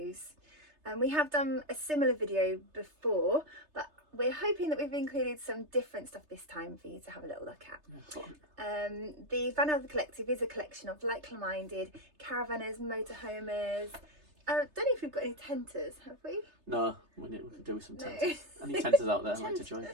We have done a similar video before, but we're hoping that we've included some different stuff this time for you to have a little look at. The Vanother Collective is a collection of like-minded caravanners, motorhomers. I don't know if we've got any tenters, have we? No, we could do with some tenters. Any tenters out there like to join?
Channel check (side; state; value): left; late; 3.3 ms